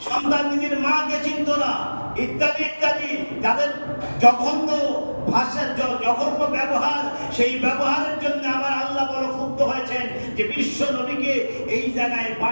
সন্তান নিজের মাকে চিনত না, ইত্যাদি ইত্যাদি। যাদের জঘন্য ভাষা, জঘন্য ব্যবহার, সেই ব্যবহারের জন্য আমার আল্লাহ বড় ক্ষুব্ধ হয়েছেন যে বিশ্ব নবীকে এই জায়গায়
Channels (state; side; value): inverted; both; correlation -1.00